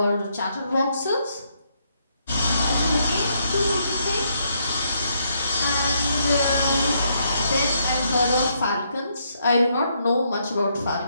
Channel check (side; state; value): both; inverted; correlation -0.75